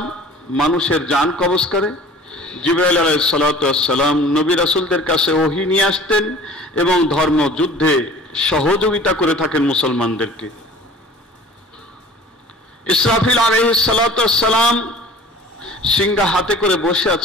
মানুষের জান কবজ করে, জিবরাইল আলাইহিস সালাতু ওয়াস সালাম নবী রাসূলদের কাছে ওহী নিয়ে আসতেন এবং ধর্ম যুদ্ধে সহযোগিতা করে থাকেন মুসলমানদেরকে। ইসরাফিল আলাইহিস সালাতু ওয়াস সালাম সিংহা হাতে করে বসে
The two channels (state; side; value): normal; both; correlation 0.45